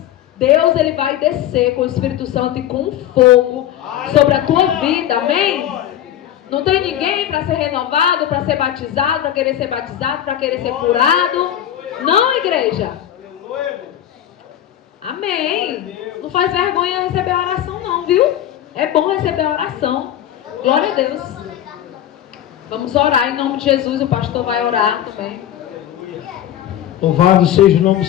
Deus ele vai descer com o Espírito Santo e com fogo sobre a tua vida, amém? Não tem ninguém para ser renovado, para ser batizado, para querer ser batizado, para querer ser curado? Não, igreja? Amém. Não faz vergonha receber a oração não, viu? É bom receber a oração. Glória a Deus. Vamos orar em nome de Jesus. O pastor vai orar também. Louvado seja o nome do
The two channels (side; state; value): right; quieter; 11.4 dB